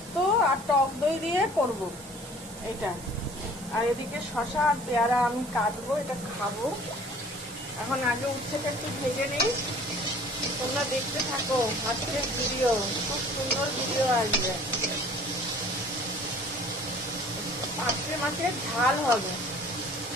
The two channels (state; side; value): normal; both; correlation 0.50